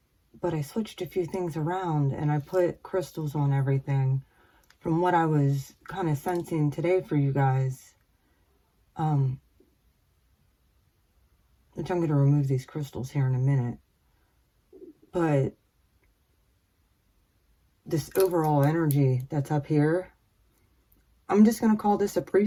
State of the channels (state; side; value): identical; both; correlation 1.00